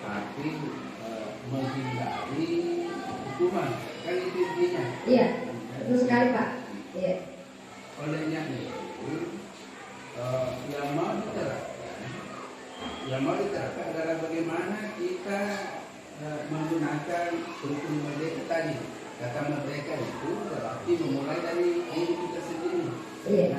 tapi menghindari hukuman. Kan itu intinya. Iya, betul sekali Pak. Iya. Olehnya itu yang mau diterapkan adalah bagaimana kita menggunakan rukun merdeka tadi. Kata merdeka itu berarti memulai dari diri kita sendiri.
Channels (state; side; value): identical; both; correlation 1.00